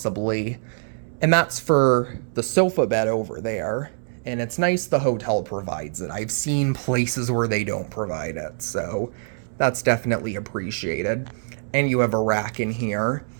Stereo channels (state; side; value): silent; left; 63 dB below the other